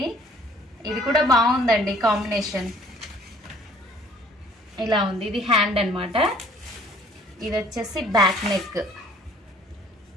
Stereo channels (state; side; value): normal; both; correlation 0.57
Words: ఇది కూడా బాగుందండి కాంబినేషన్, ఇలా ఉంది. ఇది హ్యాండ్ అన్నమాట. ఇది వచ్చేసి బ్యాక్ నెక్.